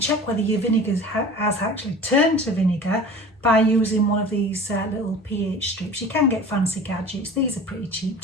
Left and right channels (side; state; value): both; normal; correlation 0.39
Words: whether your vinegar has actually turned to vinegar by using one of these little pH strips. You can get fancy gadgets, these are pretty cheap